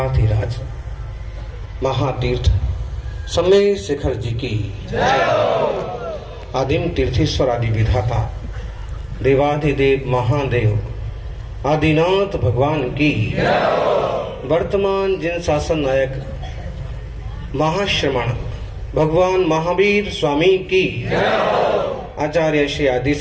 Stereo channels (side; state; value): both; identical; correlation 1.00